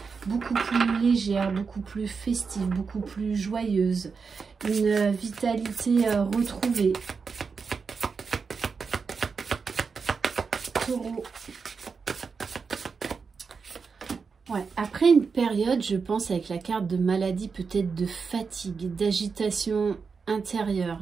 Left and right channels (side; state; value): left; quieter; 5.3 dB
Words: beaucoup plus légères, beaucoup plus festives, beaucoup plus joyeuses. Une vitalité retrouvée. Taureau. Ouais, après une période, je pense, avec la carte de maladie, peut-être de fatigue, d'agitation intérieure,